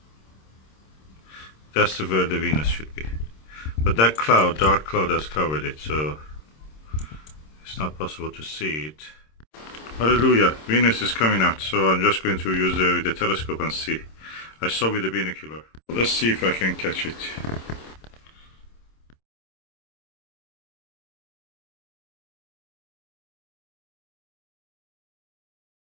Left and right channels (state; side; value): late; right; 26 ms